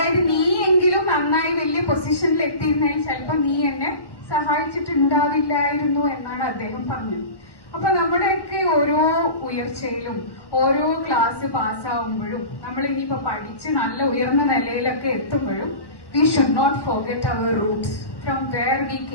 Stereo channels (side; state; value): right; late; 1.1 ms